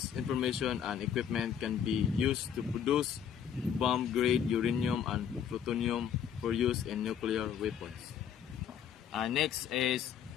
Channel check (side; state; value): right; quieter; 8.4 dB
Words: information and equipment can be used to produce bomb-grade uranium and plutonium for use in nuclear weapons. Next is